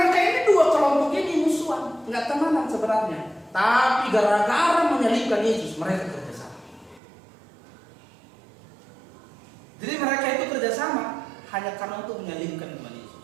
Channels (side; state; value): left; drops out; at 7.0 s